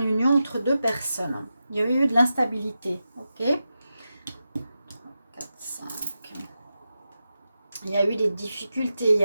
une union entre deux personnes. Il y a eu de l'instabilité, ok? 4, 5. Il y a eu des difficultés, il y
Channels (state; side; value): inverted; both; correlation -0.90